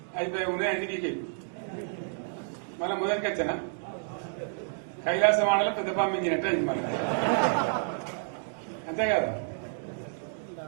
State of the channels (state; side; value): silent; left; digital silence